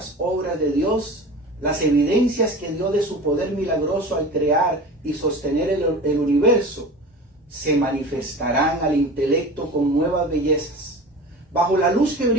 obras de Dios, las evidencias que dio de su poder milagroso al crear y sostener el universo, se manifestarán al intelecto con nuevas bellezas. Bajo la luz que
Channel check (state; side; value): normal; both; correlation 0.35